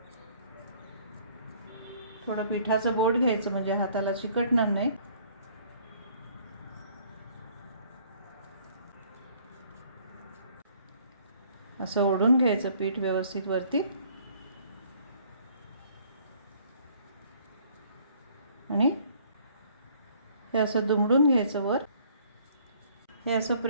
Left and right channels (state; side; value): inverted; both; correlation -0.59